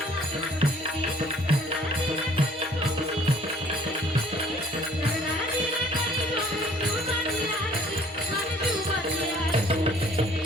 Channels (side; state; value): both; normal; correlation 0.56